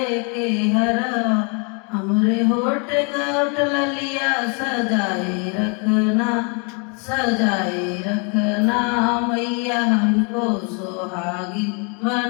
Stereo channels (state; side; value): quieter; right; 35.4 dB